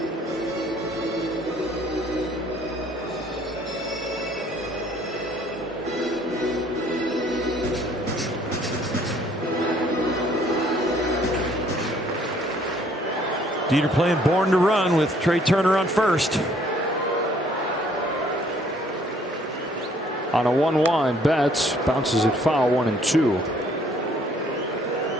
Dieter playing Born to Run with Trey Turner on first. On a 1-1, Betts bounces it foul, 1-2.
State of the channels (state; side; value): normal; both; correlation 0.61